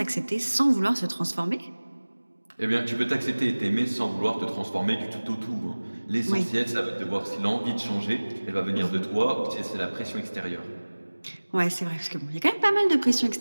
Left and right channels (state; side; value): inverted; both; correlation -1.00